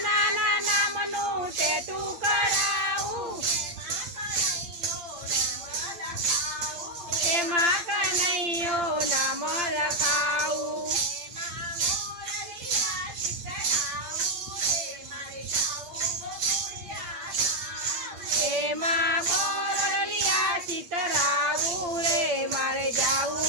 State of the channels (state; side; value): late; left; 8.7 ms